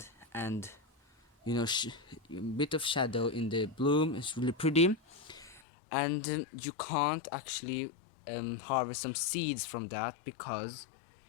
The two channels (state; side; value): drops out; right; at 5.6 s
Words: and you know, bit of shadow in the bloom. It's really pretty. And you can't actually harvest some seeds from that, because